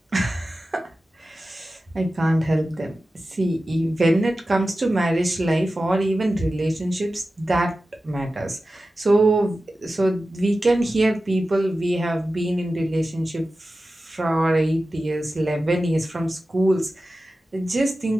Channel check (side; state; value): both; normal; correlation 0.94